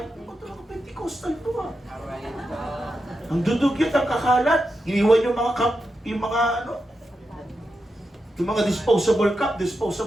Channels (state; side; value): normal; both; correlation 0.88